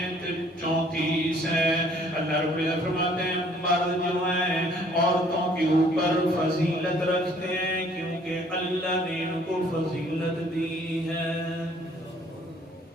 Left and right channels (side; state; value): both; normal; correlation 0.59